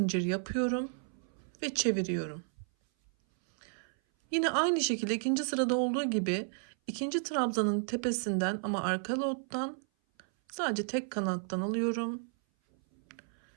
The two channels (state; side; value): silent; left; 56 dB below the other